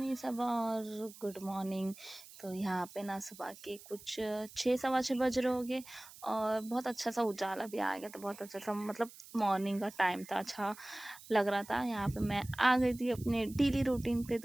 Saba और गुड मॉर्निंग। तो यहाँ पे ना सुबह के कुछ 6 सवा 6 बज रहे होंगे और बहुत अच्छा सा उजाला भी आ गया। तो बहुत अच्छा सा मतलब मॉर्निंग का टाइम था, अच्छा लग रहा था। यहाँ पे मैं आ गई थी अपने डेली रूटीन पे।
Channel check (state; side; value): noise; right; hiss, 18 dB below the sound